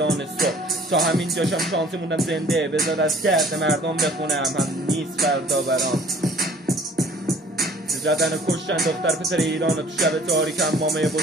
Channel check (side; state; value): both; normal; correlation 0.53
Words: صبح. تا همین جاشم شانسی موندم زنده، بذار از درد مردم بخونم، هم نیست فردا برام. زدن و کشتن دختر پسر ایران و تو شب تاریک، هم مامه